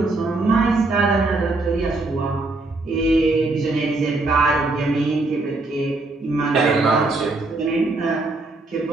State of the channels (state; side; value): quieter; left; 3.1 dB